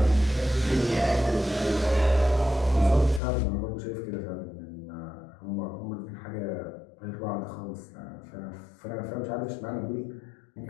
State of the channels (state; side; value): drops out; right; at 3.2 s